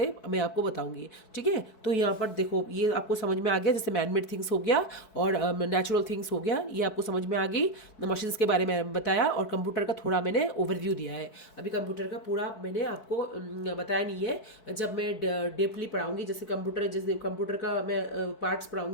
मैं आपको बताऊँगी। ठीक है, तो यहाँ पर देखो ये आपको समझ में आ गया, जैसे मैन मेड थिंग्स हो गया और नेचुरल थिंग्स हो गया, ये आपको समझ में आ गई। मशीन्स के बारे में बताया और कंप्यूटर का थोड़ा मैंने ओवरव्यू दिया है। अभी कंप्यूटर का पूरा मैंने आपको बताया नहीं है, जब मैं डीपली पढ़ाऊंगी, जैसे कंप्यूटर का मैं पार्ट्स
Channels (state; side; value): late; right; 4.6 ms